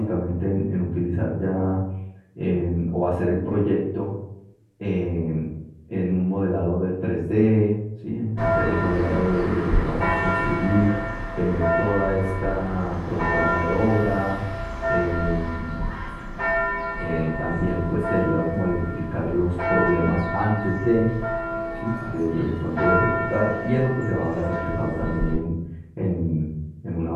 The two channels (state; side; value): identical; both; correlation 1.00